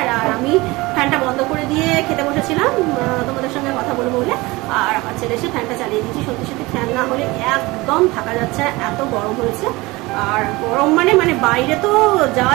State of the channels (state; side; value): quieter; left; 21.9 dB